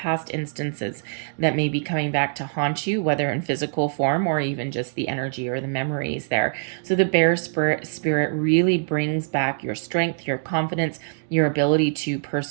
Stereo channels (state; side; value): silent; left; digital silence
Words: instances that may be coming back to haunt you, whether in physical form or even just the energy or the memories there. So the Bear Spirit really brings back your strength, your confidence, your ability to